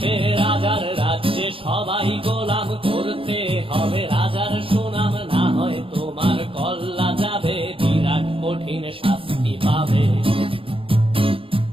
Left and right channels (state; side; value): late; left; 0.26 ms